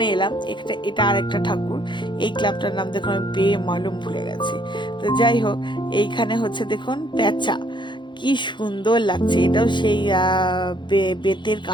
এলাম, এটা আর একটা ঠাকুর। এই ক্লাবটার নাম দেখুন, আমি মালুম ভুলে গেছি। তো যাই হোক, এইখানে হচ্ছে দেখুন প্যাঁচা, কি সুন্দর লাগছে। এটাও সেই বেতের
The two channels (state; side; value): late; right; 0.23 ms